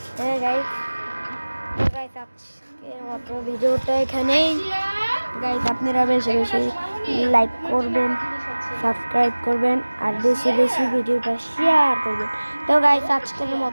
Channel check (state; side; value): inverted; both; correlation -1.00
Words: হ্যাঁ গাইস আজকের মতো ভিডিওটা এখানেই গাইস আপনারা বেশি বেশি লাইক করবেন সাবস্ক্রাইব করবেন আর বেশি বেশি ভিডিওটা শেয়ার করবেন তো গাইস আজকের